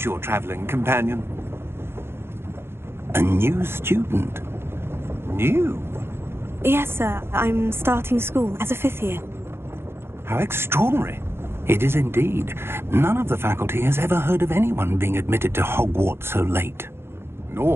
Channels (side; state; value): left; late; 0.12 ms